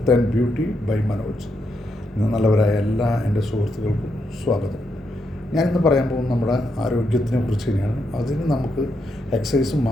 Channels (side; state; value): both; normal; correlation 0.81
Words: and beauty by Manoj. നല്ലവരായ എല്ലാ എൻ്റെ സുഹൃത്തുക്കൾക്കും സ്വാഗതം. ഞാനിന്ന് പറയാൻ പോകുന്നത് നമ്മുടെ ആരോഗ്യത്തിനെ കുറിച്ച് തന്നെയാണ്. അതിന് നമുക്ക് എക്സസൈസ്